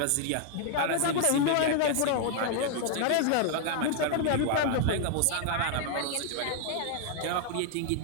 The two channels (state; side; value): different; both; correlation 0.00